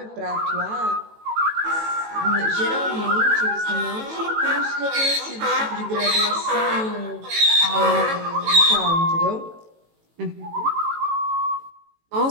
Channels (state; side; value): late; left; 18 ms